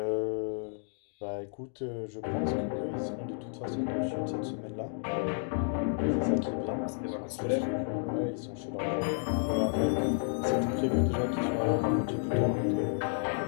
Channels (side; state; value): right; silent; 57 dB below the other